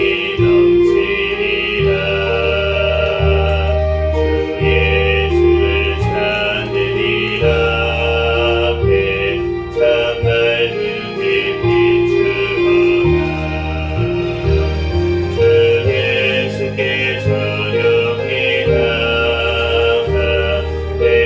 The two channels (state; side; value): identical; both; correlation 1.00